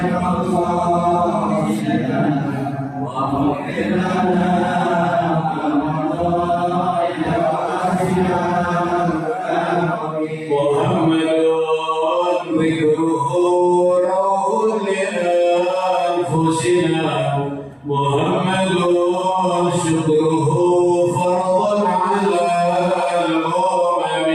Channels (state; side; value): identical; both; correlation 1.00